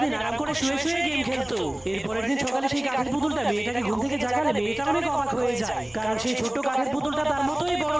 আরাম করে শুয়ে শুয়ে গেম খেলতো। এরপরের দিন সকালে সেই কাঠের পুতুলটা মেয়েটাকে ঘুম থেকে জাগালে মেয়েটা অনেক অবাক হয়ে যায়, কারণ সেই ছোট্ট কাঠের পুতুলটা তার মতোই বড়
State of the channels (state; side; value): noise; left; hum, 29 dB below the sound